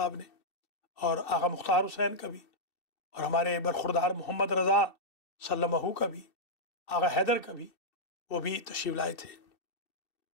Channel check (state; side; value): late; right; 2.7 ms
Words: نے، اور آغا مختار حسین کا بھی، اور ہمارے برخوردار محمد رضا سلمہ کا بھی، آغا حیدر کا بھی، وہ بھی تشریف لائے تھے۔